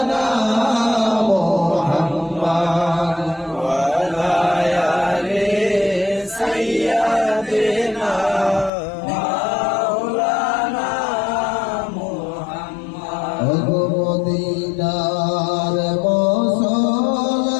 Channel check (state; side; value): drops out; right; at 8.7 s